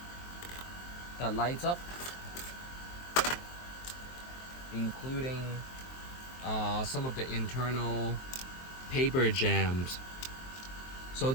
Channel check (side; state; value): right; late; 23 ms